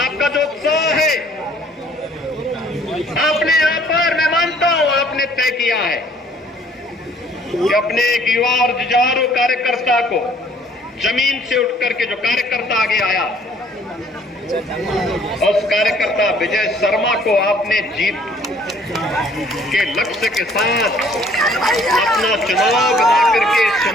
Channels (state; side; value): normal; both; correlation 0.58